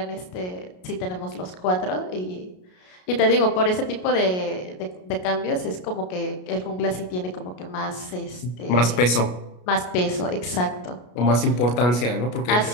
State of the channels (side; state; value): right; late; 33 ms